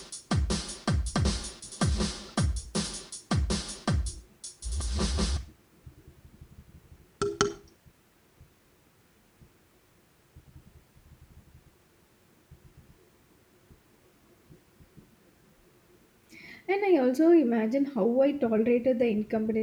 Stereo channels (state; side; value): identical; both; correlation 1.00